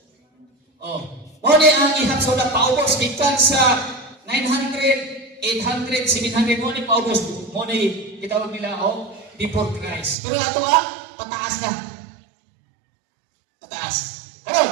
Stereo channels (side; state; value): left; drops out; at 10.2 s